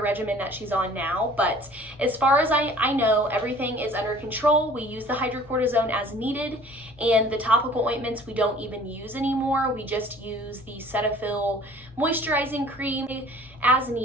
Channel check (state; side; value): normal; both; correlation 0.50